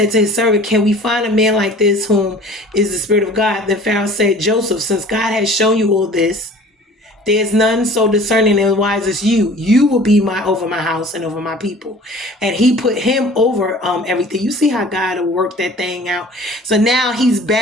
to his servant, can we find a man like this whom is the Spirit of God? Then Pharaoh said, Joseph, since God has shown you all this, there's none so discerning and wise as you. You will be over my house and over my people. And he put him over everything. You see how God will work that thing out. So now he's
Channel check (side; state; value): both; normal; correlation 0.46